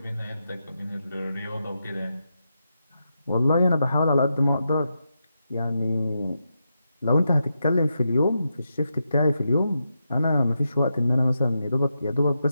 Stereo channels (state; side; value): inverted; both; correlation -0.85